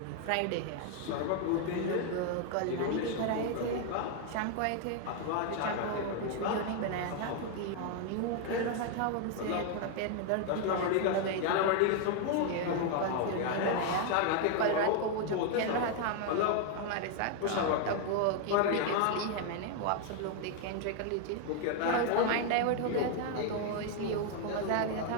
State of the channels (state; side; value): different; both; correlation 0.00